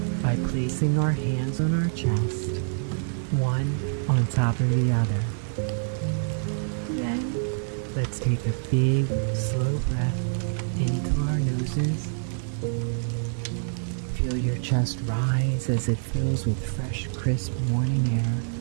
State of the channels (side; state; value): left; silent; digital silence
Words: by placing our hands on our chest, one on top of the other. Then, let's take a big, slow breath into our noses. Feel your chest rise as it fills with fresh, crisp morning air.